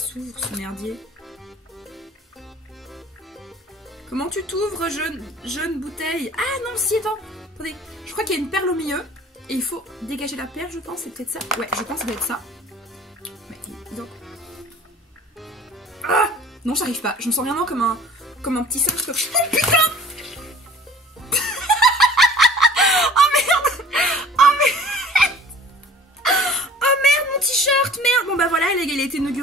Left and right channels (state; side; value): normal; both; correlation 0.48